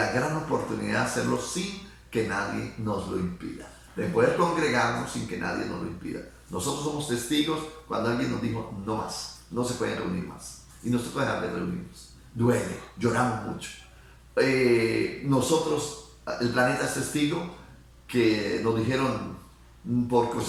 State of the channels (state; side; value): identical; both; correlation 1.00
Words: gran oportunidad de hacerlo sin que nadie nos lo impida, de poder congregarnos sin que nadie nos lo impida. Nosotros somos testigos cuando alguien nos dijo, no más, no se pueden reunir más, y no se puede dejar de reunirnos. Duele, lloramos mucho. Nosotros, el planeta es testigo que nos dijeron por